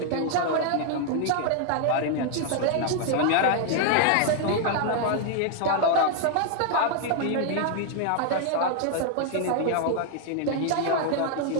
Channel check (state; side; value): different; both; correlation 0.00